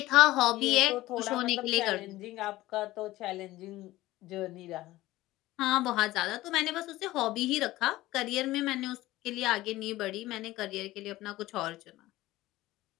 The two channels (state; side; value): quieter; right; 17.1 dB